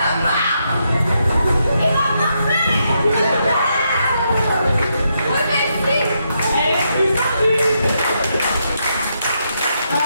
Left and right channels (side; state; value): both; inverted; correlation -0.80